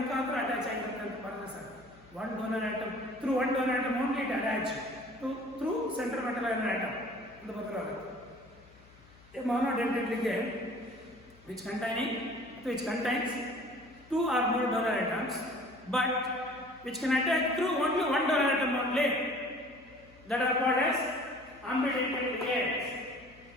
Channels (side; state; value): left; noise; hum, 25 dB below the sound